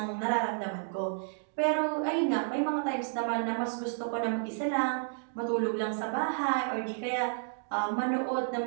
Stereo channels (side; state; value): left; silent; digital silence